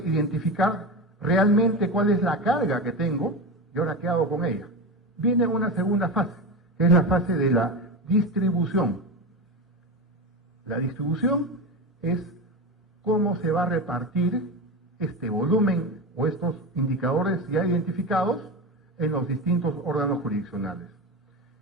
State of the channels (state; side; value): normal; both; correlation 0.22